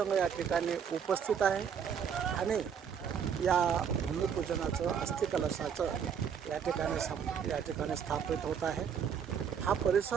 या ठिकाणी उपस्थित आहे. आणि या भूमिपूजनाचं अस्थि कलशाचं या ठिकाणी स्थापित होत आहे. हा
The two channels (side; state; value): left; quieter; 7.5 dB